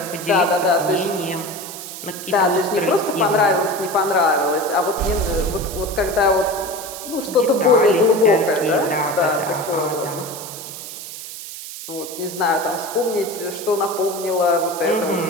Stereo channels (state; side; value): noise; right; hiss, 11 dB below the sound